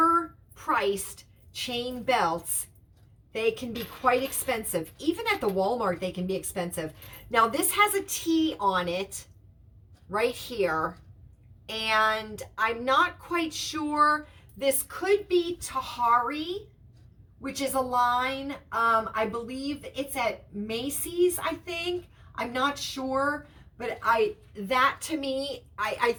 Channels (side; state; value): both; identical; correlation 1.00